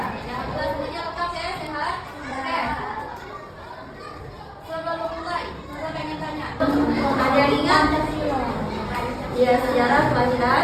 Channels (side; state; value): both; identical; correlation 1.00